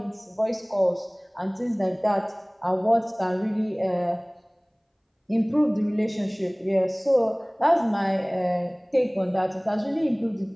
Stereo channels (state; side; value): identical; both; correlation 1.00